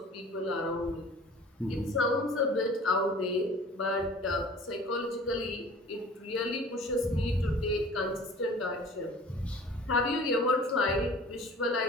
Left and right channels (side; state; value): both; normal; correlation 0.45